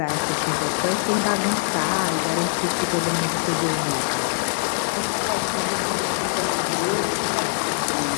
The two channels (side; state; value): right; silent; 63 dB below the other